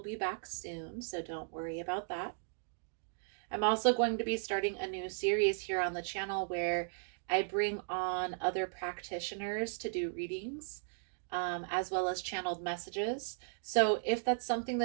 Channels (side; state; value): left; silent; digital silence